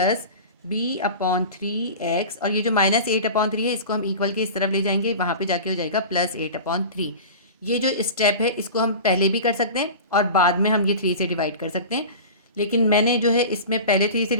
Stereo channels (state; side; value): inverted; both; correlation -0.34